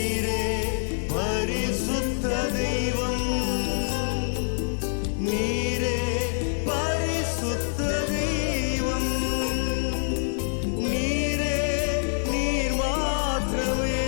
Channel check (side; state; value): right; silent; digital silence